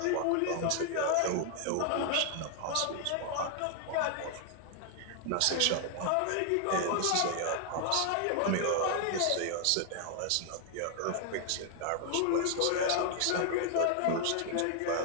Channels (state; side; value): different; both; correlation 0.00